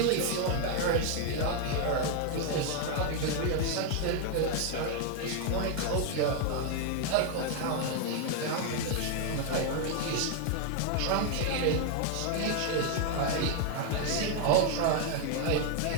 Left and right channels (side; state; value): both; different; correlation 0.00